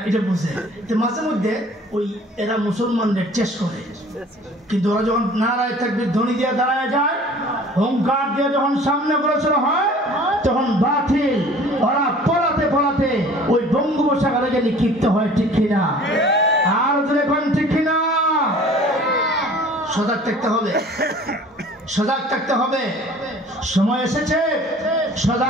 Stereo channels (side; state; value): both; normal; correlation 0.48